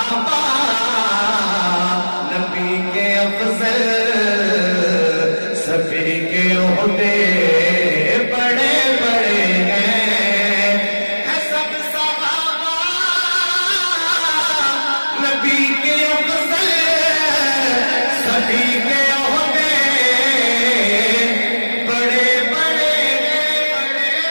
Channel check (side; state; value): both; inverted; correlation -1.00